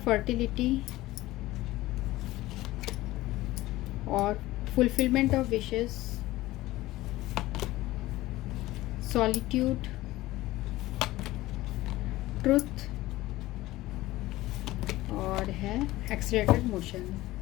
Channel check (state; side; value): quieter; right; 17.4 dB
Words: और fulfilment of wishes, solitude, truth और है एक्सीलरेटेड मोशन।